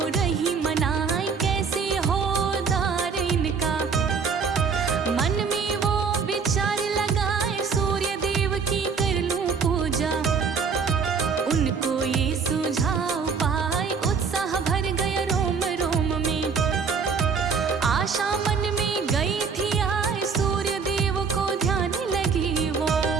रही मनाए, कैसे हो उद्धार इनका। मन में वो विचार लगाए, सूर्य देव की कर लूं पूजा, उनको ये सुझाव पाए, उत्साह भर गया रोम रोम में, आशा मन में गई थी आए, सूर्य देव को ध्यान लगी वो।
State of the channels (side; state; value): left; quieter; 5.6 dB